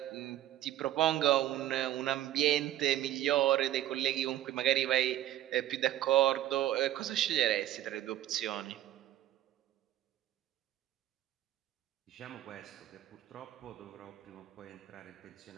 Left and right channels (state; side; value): quieter; left; 13.2 dB